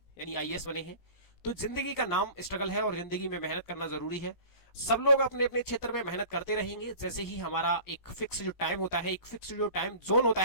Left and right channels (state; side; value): late; right; 17 ms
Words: यानी आईएएस बने हैं। तो जिंदगी का नाम स्ट्रगल है और जिंदगी में मेहनत करना जरूरी है। सब लोग अपने अपने क्षेत्र में मेहनत करते रहेंगे, जैसे ही हमारा एक फिक्स जो टाइम होता है, एक फिक्स जो टाइम जोन होता